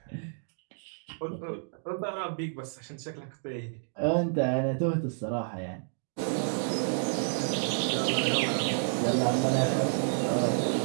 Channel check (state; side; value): silent; left; digital silence